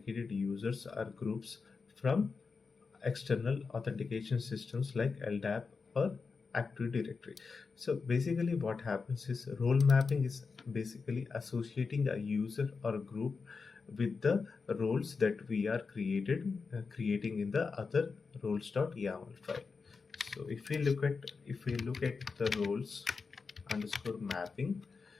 users or groups from external authentication systems like LDAP or Active Directory. So basically what happens is, role mapping is basically associating a user or a group with the roles that we are creating in the other roles.yaml file. So if we look at the roles underscore mapping,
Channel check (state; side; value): quieter; right; 4.8 dB